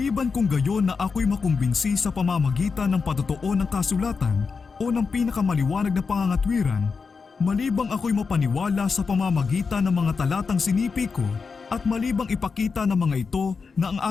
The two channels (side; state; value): right; quieter; 5.0 dB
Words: kung gayon na ako'y makumbinsi sa pamamagitan ng patotoo ng kasulatan o ng pinakamaliwanag na pangangatwiran, malibang ako'y mapaniwala sa pamamagitan ng mga talatang sinipi ko at malibang ipakita ng mga ito na ang